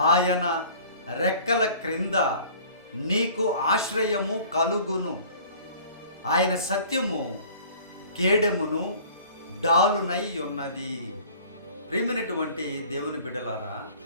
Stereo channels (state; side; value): inverted; both; correlation -0.48